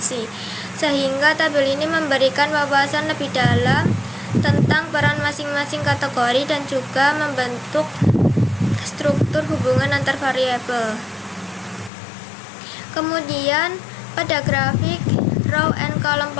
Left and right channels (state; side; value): drops out; right; at 11.9 s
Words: sehingga tabel ini memberikan wawasan lebih dalam tentang peran masing-masing kategori dan juga membentuk struktur hubungan antar variabel. Kemudian pada grafik row and column